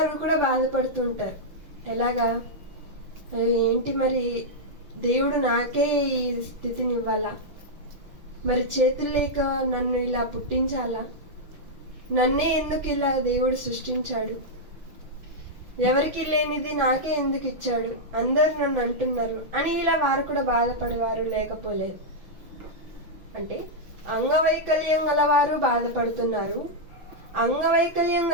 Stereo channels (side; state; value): left; late; 6.1 ms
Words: కూడా బాధపడుతూ ఉంటారు. ఎలాగా? ఏంటి మరి దేవుడు నాకే ఈ స్థితిని ఇవ్వాలా, మరి చేతులు లేక నన్ను ఇలా పుట్టించాలా, నన్నే ఎందుకు ఇలా దేవుడు సృష్టించాడు, ఎవరికి లేనిది నాకే ఎందుకు ఇచ్చాడు, అందరు నన్ను అంటున్నారు అని ఇలా వారు కూడా బాధపడేవారు లేకపోలేదు. అంటే అంగవైకల్యం గలవారు బాధపడుతున్నారు, అంగవైకల్యం